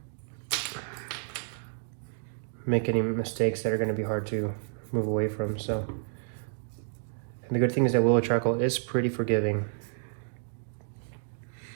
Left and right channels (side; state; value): left; silent; digital silence